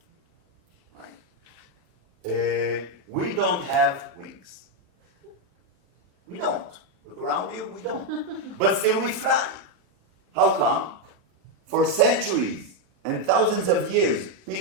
Right? We don't have wings. around you? We don't. But still we fly. How come? For centuries and thousands of years,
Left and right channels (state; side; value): late; left; 29 ms